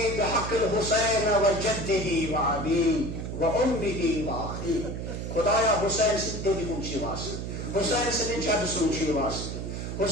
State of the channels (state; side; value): noise; right; hum, 5 dB below the sound